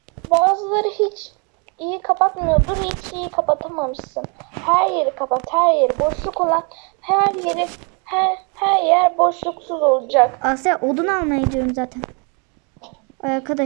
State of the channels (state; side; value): quieter; left; 35.4 dB